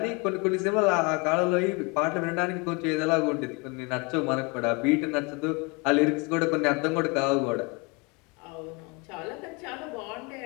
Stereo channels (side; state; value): right; quieter; 29.1 dB